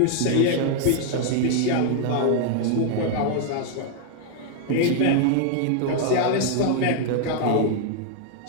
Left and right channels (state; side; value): different; both; correlation 0.00